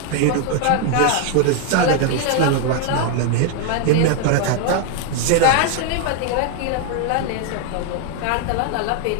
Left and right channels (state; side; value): different; both; correlation 0.00